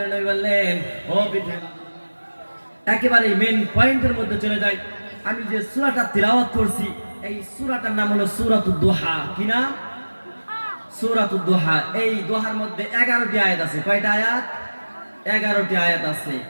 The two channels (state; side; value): inverted; both; correlation -1.00